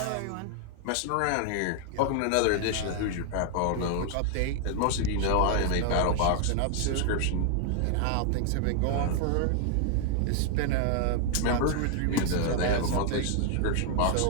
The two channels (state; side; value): different; both; correlation 0.00